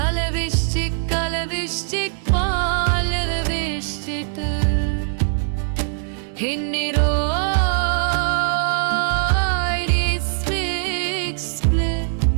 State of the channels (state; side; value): silent; left; digital silence